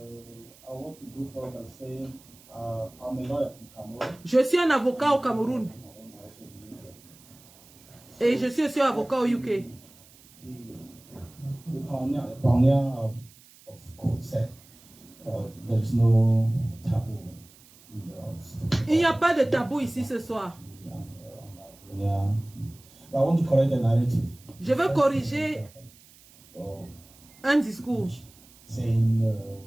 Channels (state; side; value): noise; right; hiss, 25 dB below the sound